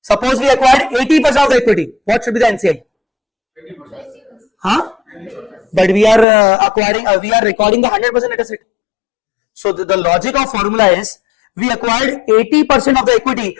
Suppose we acquired 80% of the equity. What should be the NCI? 20%. Huh? But we are we are recording the 100% net asset. So the logic of formula is we acquired 80% of the equity.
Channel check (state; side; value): drops out; right; at 6.2 s